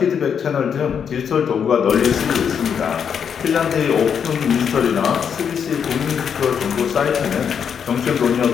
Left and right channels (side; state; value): right; quieter; 7.4 dB